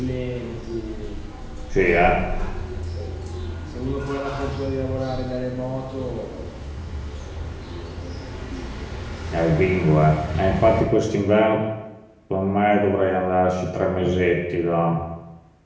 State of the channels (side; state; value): both; identical; correlation 1.00